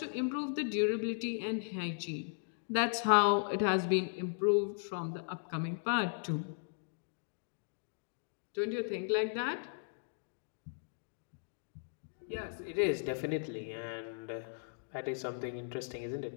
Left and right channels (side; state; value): right; silent; digital silence